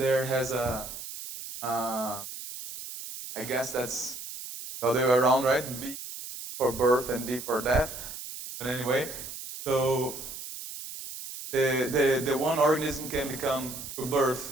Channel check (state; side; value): noise; right; hiss, 10 dB below the sound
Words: has I guess that's the other way around, right? B for birth and D for death. But anyway, so the one organism can become through